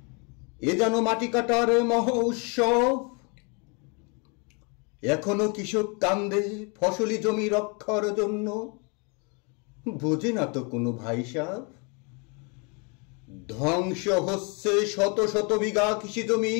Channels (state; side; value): quieter; right; 33.4 dB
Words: এ যেন মাটি কাটার মহা উৎসব। এখনো কৃষক কান্দে ফসলি জমি রক্ষার জন্য, বোঝে না তো কোনো ভাই সাহেব। ধ্বংস হচ্ছে শত শত বিঘা কৃষি জমি,